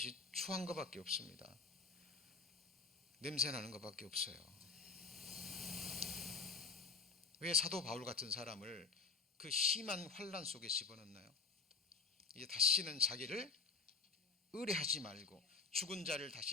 추한 것밖에 없습니다. 냄새나는 것밖에 없어요. 왜 사도 바울 같은 사람을 그 심한 환난 속에 집어넣나요? 이제 다시는 자기를 의뢰하지 말고 죽은 자를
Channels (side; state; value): right; quieter; 4.5 dB